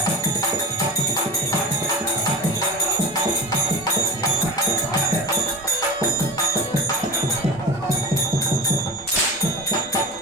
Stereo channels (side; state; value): both; normal; correlation 0.30